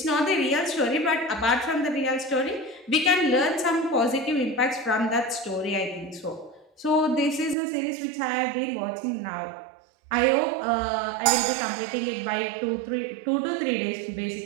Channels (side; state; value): left; drops out; at 7.6 s